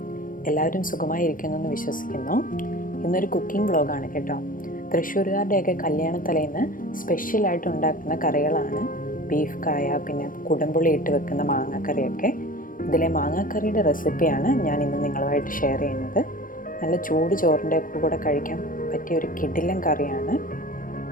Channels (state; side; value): late; right; 0.40 ms